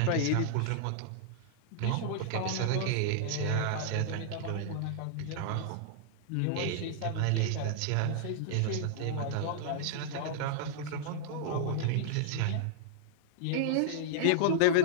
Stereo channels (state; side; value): different; both; correlation -0.01